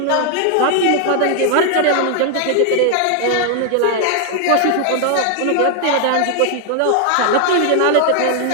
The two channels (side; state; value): both; different; correlation 0.00